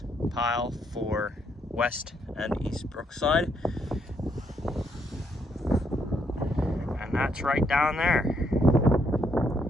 pile for West and East Brookside. And that's right down there.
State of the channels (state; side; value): normal; both; correlation 0.74